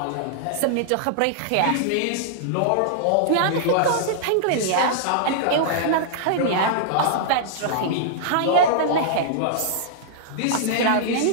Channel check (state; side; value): different; both; correlation -0.02